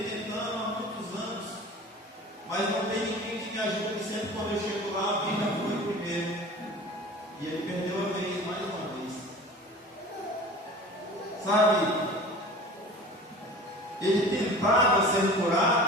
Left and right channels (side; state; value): both; normal; correlation 0.40